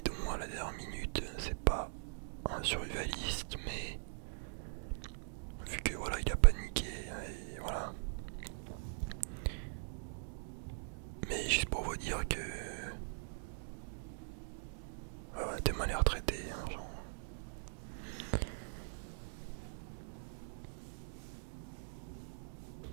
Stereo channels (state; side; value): silent; left; digital silence